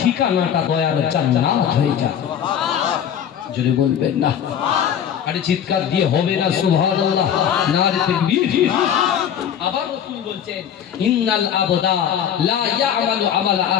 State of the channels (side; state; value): right; quieter; 8.9 dB